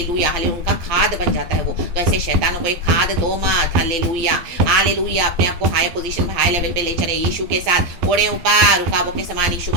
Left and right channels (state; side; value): late; left; 12 ms